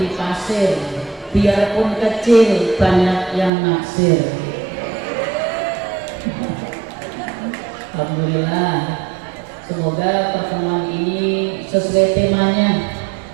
pasir, biarpun kecil banyak yang naksir. Alhamdulillah, semoga pertemuan ini sesuai temanya,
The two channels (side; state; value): left; drops out; at 3.5 s